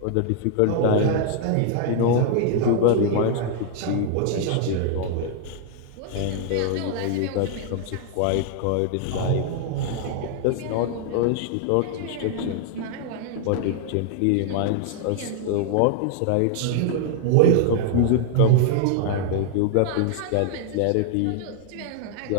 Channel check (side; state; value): both; different; correlation 0.00